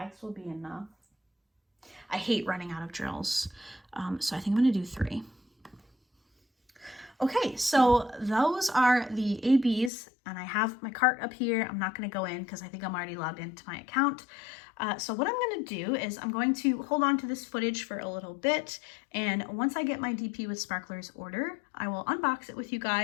will be enough? I hate running out of drills, so I think I'm going to do 3. Okay, so those are the ABs, and I have my cart up here. I'm not going to go in because I think I'm already logged into my account. So what I'm going to do is I'm going to hold on to this footage for a little bit, and once I get my DP with Sparklers order, I will unbox it with you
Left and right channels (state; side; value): drops out; right; at 9.9 s